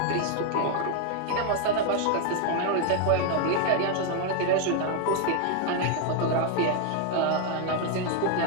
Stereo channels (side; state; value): both; different; correlation 0.01